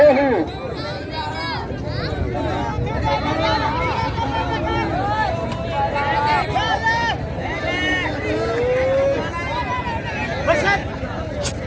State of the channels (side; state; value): both; identical; correlation 1.00